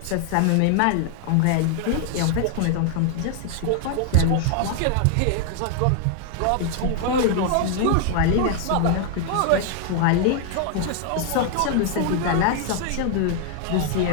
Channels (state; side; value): different; both; correlation 0.00